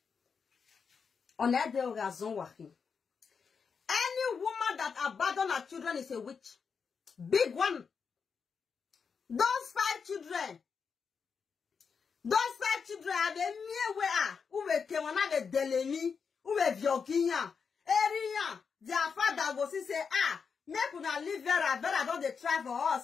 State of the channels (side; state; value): right; quieter; 5.9 dB